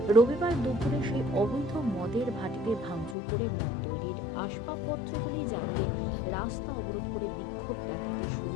রবিবার দুপুরে সেই অবৈধ মদের ভাটিতে ভাঙচুর করে মদ তৈরির আসবাবপত্রগুলি জ্বালিয়ে রাস্তা অবরোধ করে বিক্ষোভ দেখাতে শুরু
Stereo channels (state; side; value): drops out; right; at 3.2 s